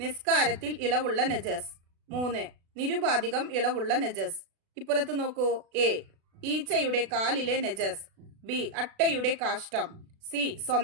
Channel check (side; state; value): left; late; 36 ms